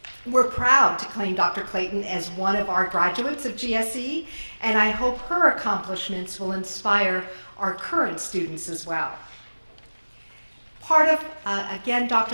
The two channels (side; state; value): both; inverted; correlation -1.00